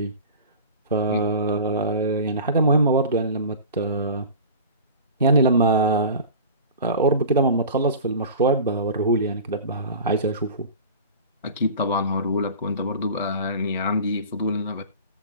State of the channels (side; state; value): both; inverted; correlation -0.36